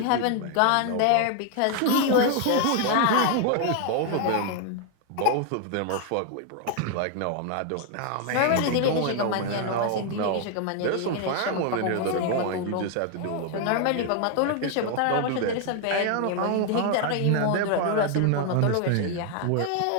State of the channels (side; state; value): both; different; correlation 0.00